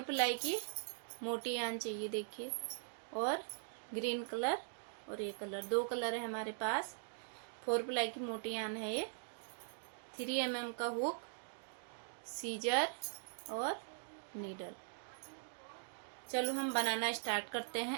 प्लाई की मोटी यान चाहिए। देखिए, और ग्रीन कलर और ये कलर, 2 कलर है हमारे पास। 4 प्लाई की मोटी यान है ये। 3 mm का हुक, सीजर और नीडल। चलो हम बनाना स्टार्ट करते हैं।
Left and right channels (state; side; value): silent; left; digital silence